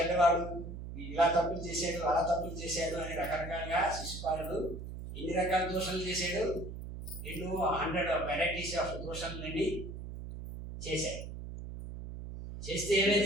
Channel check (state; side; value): noise; right; hum, 9 dB below the sound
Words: ఇలా తప్పులు చేశాడు, అలా తప్పులు చేశాడు అని రకరకాలుగా శిశుపాలుడు ఎన్ని రకాల దోషాలు చేశాడు, 100 వెరైటీస్ ఆఫ్ దోషాలని చేశాడు. చేస్తే ఏమైంది?